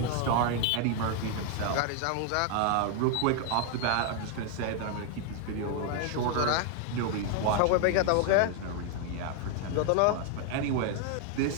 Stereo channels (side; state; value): both; different; correlation 0.00